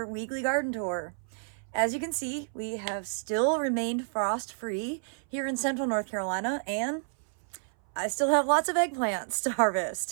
weekly garden tour. As you can see, we have still remained frost-free here in central North Carolina, and I still have lots of eggplants to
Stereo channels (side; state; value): left; silent; 58 dB below the other